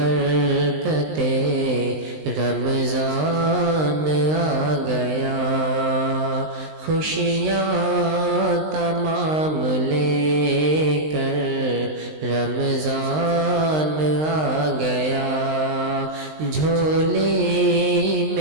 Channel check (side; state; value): left; late; 19 ms